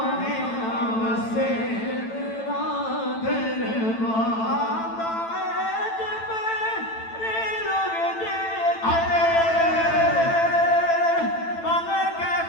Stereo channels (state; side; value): late; right; 9.0 ms